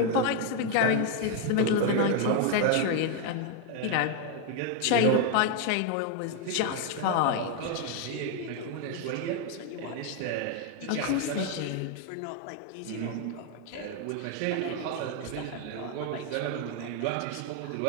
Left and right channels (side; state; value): both; different; correlation 0.00